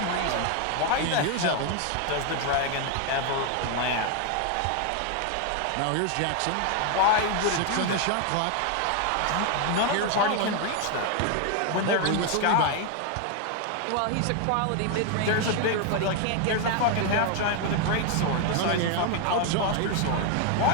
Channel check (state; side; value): different; both; correlation 0.01